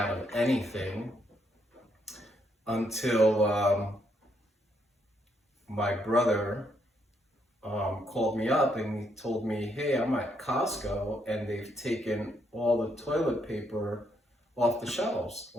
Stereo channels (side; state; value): both; normal; correlation 0.75